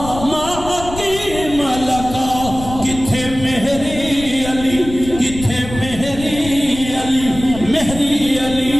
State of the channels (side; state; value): left; noise; rumble, 11 dB below the sound